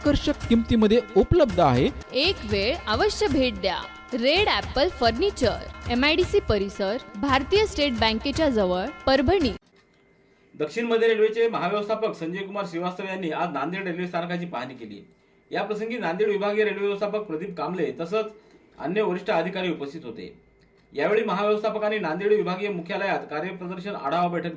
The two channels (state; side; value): identical; both; correlation 1.00